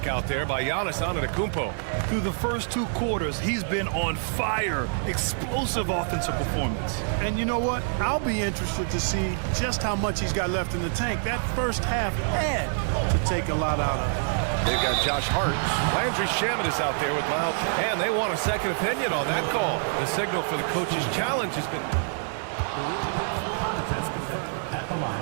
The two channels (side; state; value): left; silent; digital silence